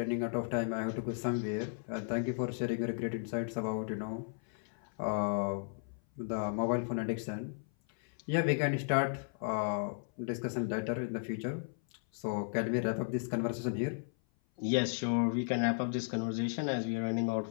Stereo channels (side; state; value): right; silent; 54 dB below the other